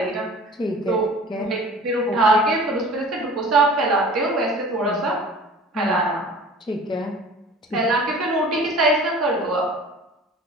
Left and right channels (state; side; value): normal; both; correlation 0.43